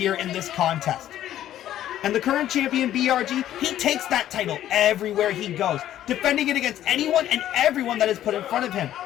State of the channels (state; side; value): quieter; right; 12.2 dB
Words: in this contest. And the current champion, BRG, he takes that title everywhere he goes, defending it against anyone and everyone that is put in front of him.